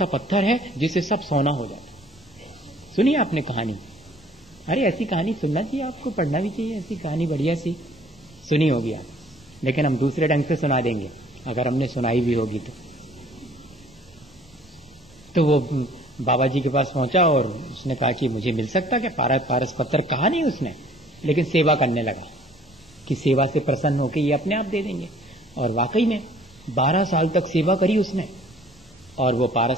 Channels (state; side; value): normal; both; correlation 0.55